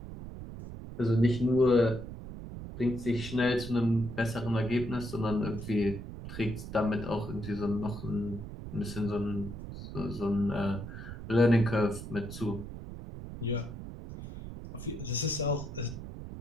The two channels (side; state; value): right; noise; rumble, 10 dB below the sound